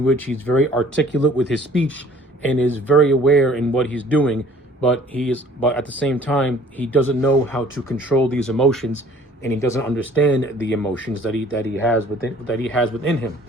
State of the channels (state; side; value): normal; both; correlation 0.53